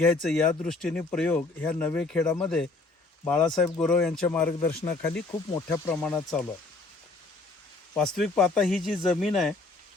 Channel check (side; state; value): right; quieter; 3.4 dB